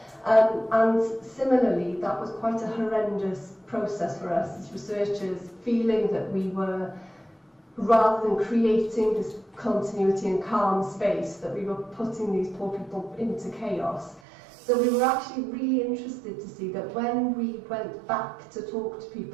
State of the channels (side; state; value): left; drops out; at 14.2 s